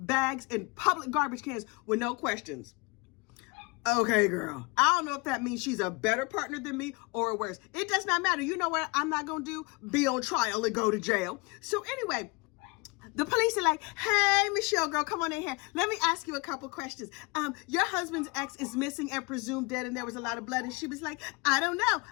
in public garbage cans with no questions. Okay, girl. I don't know if that means she's a better partner than me or worse. It does not matter. You know what I'm not going to do? Be on trial and go to jail. So anyway, the police are like, hey, Michelle, girl, come on in here. Let me ask you a couple questions. Your husband's ex is missing and presumed dead, and there was a lot of blood. And she was like, I don't know.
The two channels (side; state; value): right; quieter; 28.0 dB